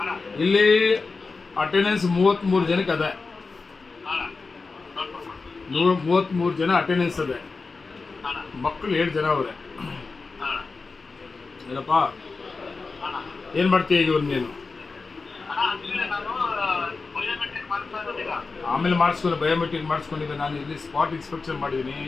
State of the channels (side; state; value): right; quieter; 4.2 dB